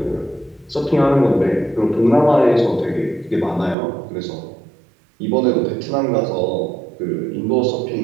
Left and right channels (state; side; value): drops out; left; at 3.8 s